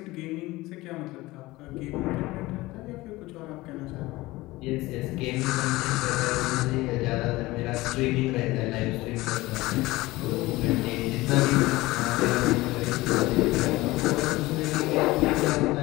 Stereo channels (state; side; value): quieter; right; 19.6 dB